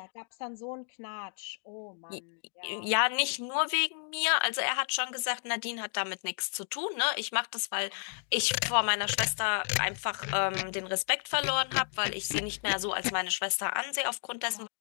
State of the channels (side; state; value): right; silent; 57 dB below the other